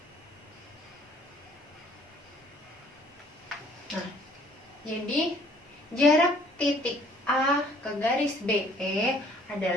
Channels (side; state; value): both; normal; correlation 0.59